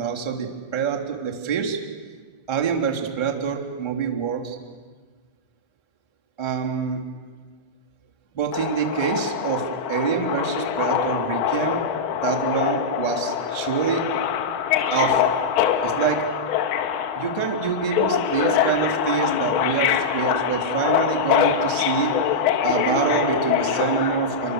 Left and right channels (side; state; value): right; late; 1.3 ms